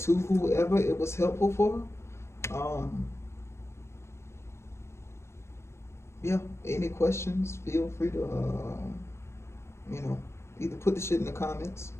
whoever it was helpful for. Um, yeah, any questions, feel free to, either put the shit in the comments.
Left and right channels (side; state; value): right; late; 0.13 ms